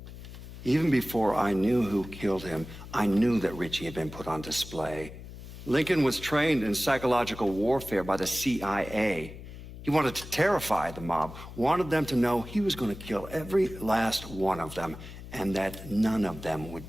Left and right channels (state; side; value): noise; left; hum, 13 dB below the sound